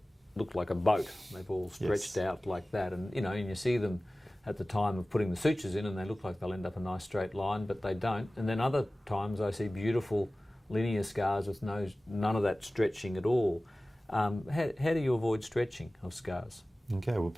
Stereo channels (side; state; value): both; normal; correlation 0.97